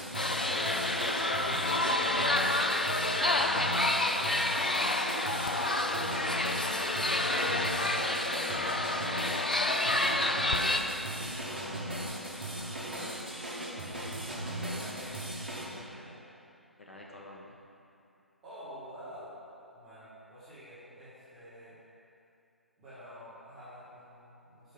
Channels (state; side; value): normal; both; correlation 0.36